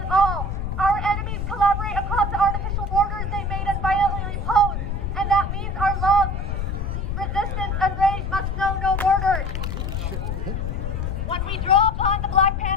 it all. Our enemies collaborate across the artificial borders they made and violently imposed, and that means our love, resistance, and rage must know no borders. When we draw upon the Black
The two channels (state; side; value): noise; left; rumble, 2 dB below the sound